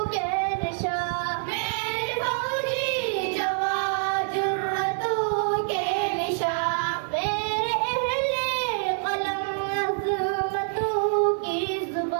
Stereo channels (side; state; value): left; silent; 61 dB below the other